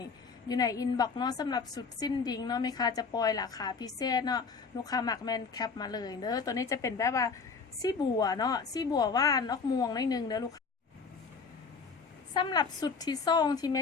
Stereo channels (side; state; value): right; quieter; 5.0 dB